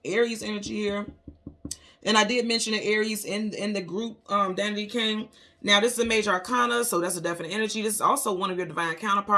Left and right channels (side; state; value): both; identical; correlation 1.00